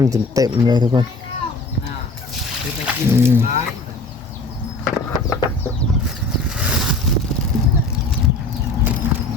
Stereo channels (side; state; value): right; quieter; 3.1 dB